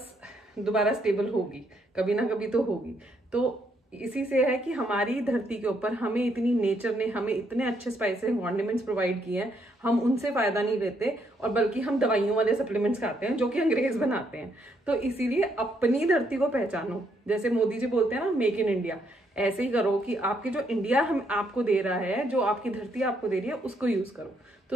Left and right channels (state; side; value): normal; both; correlation 0.73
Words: दोबारा स्टेबल होगी, कभी ना कभी तो होगी। तो इसी से है कि हमारी धरती के ऊपर हमें इतनी नेचर ने हमें इतने अच्छे स्पाइसेस कॉन्डिमेंट्स प्रोवाइड किए हैं, हम उनसे फायदा नहीं लेते और बल्कि हम दवाइयों वाले सप्लीमेंट्स खाते हैं जो कि अंग्रेज बनाते हैं। तो इसीलिए अपनी धरती को पहचानो। जैसे मोदी जी बोलते हैं ना, मेक इन इंडिया, ऐसे ही करो कि आपकी जो इंडिया हम आपको दे रहा है, जो आपकी धरती आपको दे रही है, उसको यूज करो।